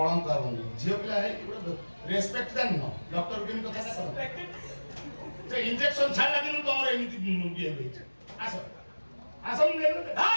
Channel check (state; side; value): inverted; both; correlation -1.00